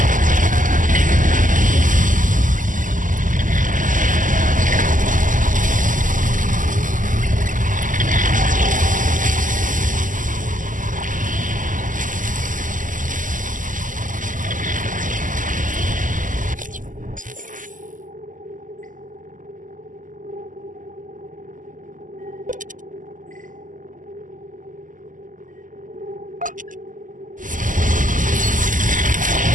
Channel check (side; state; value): left; late; 0.38 ms